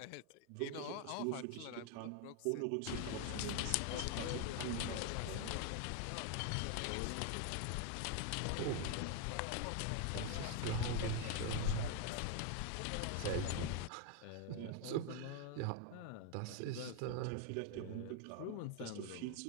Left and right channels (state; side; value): different; both; correlation 0.01